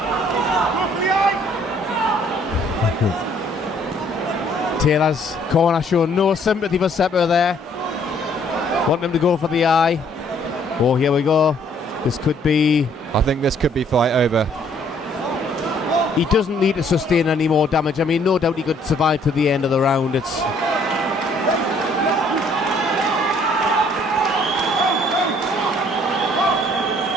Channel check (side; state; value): both; normal; correlation 0.62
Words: Taylor's corner showing no sympathy for Cepur there. Wanting him to go for the eye. Oh, here we go. This could be... I think this could be fight over. He doesn't need to sustain any more damage. I mean, no doubt he could survive to the end of the round. It's...